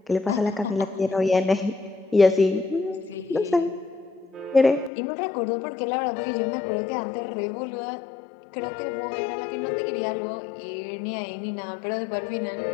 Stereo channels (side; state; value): right; drops out; at 4.9 s